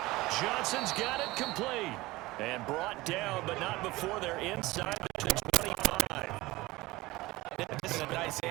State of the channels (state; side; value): quieter; left; 19.9 dB